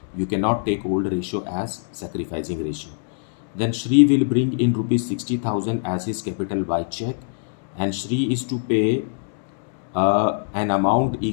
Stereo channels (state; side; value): silent; right; digital silence